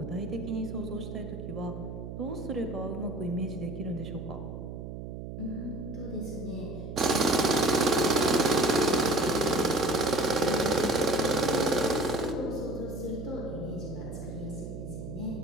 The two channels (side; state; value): right; noise; hum, 8 dB below the sound